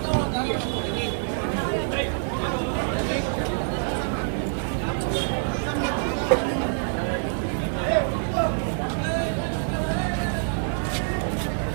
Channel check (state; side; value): silent; left; 61 dB below the other